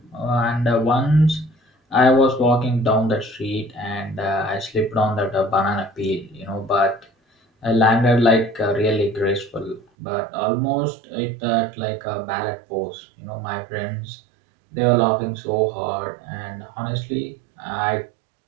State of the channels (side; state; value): left; drops out; at 9.8 s